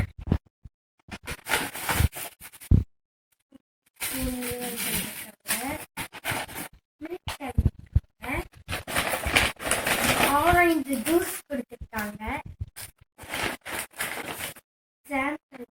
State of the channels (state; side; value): identical; both; correlation 1.00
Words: ஆரஞ்சு ஜூஸ் கொடுத்துருக்காங்க.